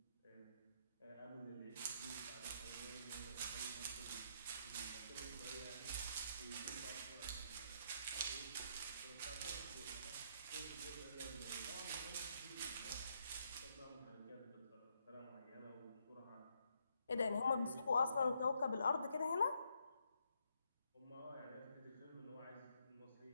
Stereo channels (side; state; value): both; inverted; correlation -0.75